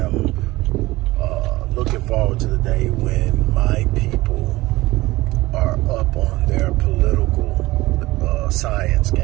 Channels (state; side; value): quieter; left; 19.2 dB